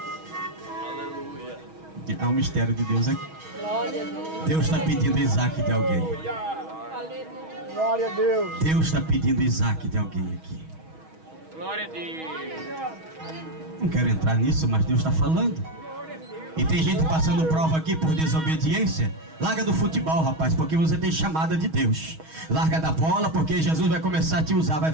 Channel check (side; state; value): left; late; 6.3 ms